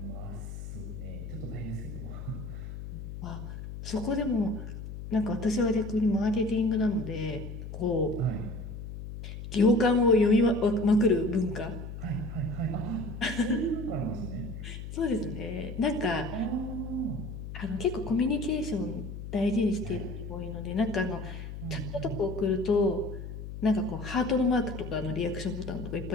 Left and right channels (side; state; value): left; noise; hum, 9 dB below the sound